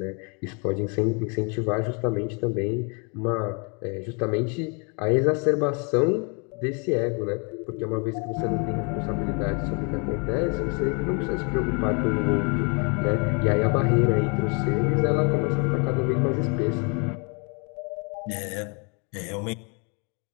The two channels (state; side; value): quieter; right; 35.1 dB